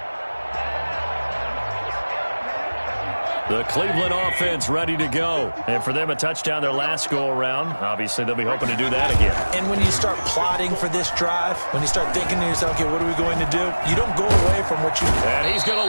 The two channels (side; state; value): both; inverted; correlation -1.00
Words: The Cleveland offense ready to go. And for them, a touchdown their last go-around. Obviously, they'll be hoping to do that again. And when you start plotting for this drive, when you start thinking to yourself, okay, what are we going to do? You don't go away from what you do. And he's going